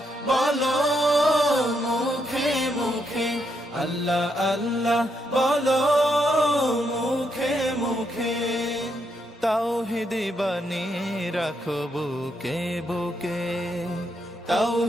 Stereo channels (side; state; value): both; normal; correlation 0.78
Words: বলো মুখে মুখে, আল্লাহ আল্লাহ বলো মুখে মুখে। তাওহীদি বাণী রাখো বুকে বুকে,